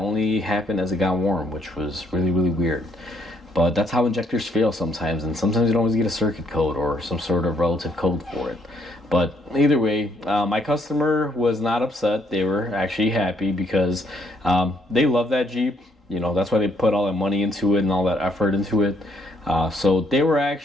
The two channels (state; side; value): normal; both; correlation 0.69